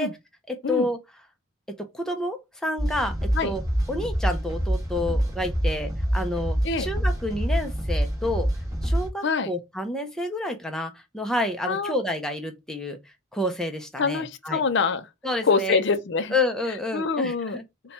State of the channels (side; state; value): both; normal; correlation 0.49